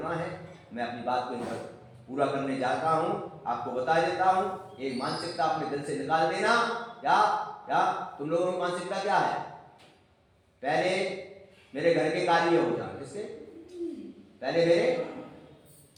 है, मैं अपनी बात को पूरा करने जाता हूं, आपको बता देता हूं। एक मानसिकता अपने दिल से निकाल देना। क्या क्या तुम लोगों की मानसिकता क्या है? पहले मेरे घर के कार्य हो जाए, किसके? पहले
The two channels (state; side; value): identical; both; correlation 1.00